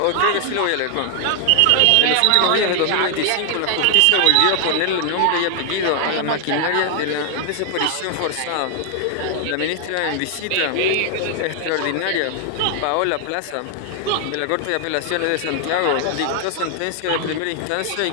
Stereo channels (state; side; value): different; both; correlation 0.00